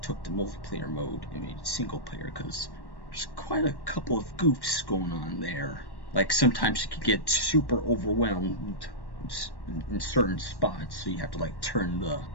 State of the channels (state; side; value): late; right; 1.1 ms